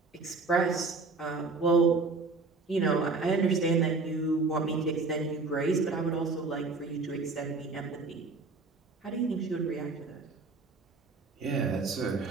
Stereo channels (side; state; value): left; quieter; 4.0 dB